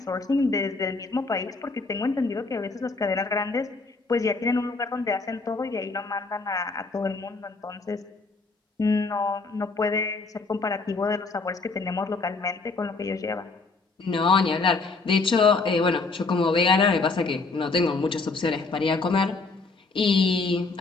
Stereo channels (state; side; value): quieter; right; 3.8 dB